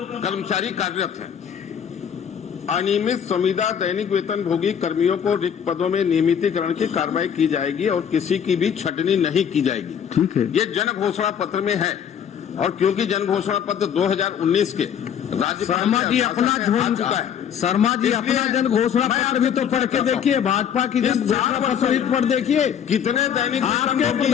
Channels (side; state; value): right; quieter; 8.4 dB